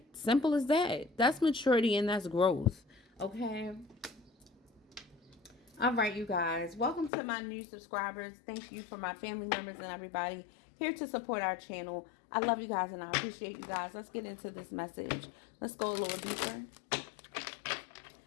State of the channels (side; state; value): right; drops out; at 7.1 s